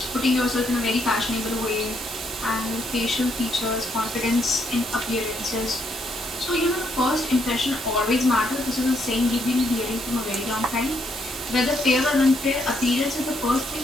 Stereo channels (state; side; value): normal; both; correlation 0.74